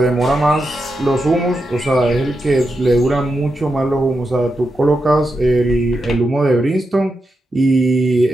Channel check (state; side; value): normal; both; correlation 0.87